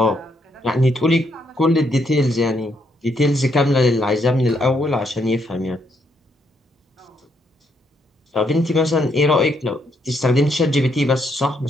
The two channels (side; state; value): both; normal; correlation 0.75